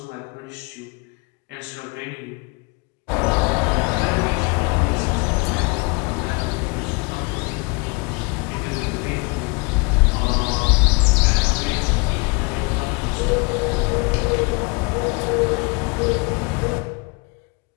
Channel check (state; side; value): quieter; right; 29.8 dB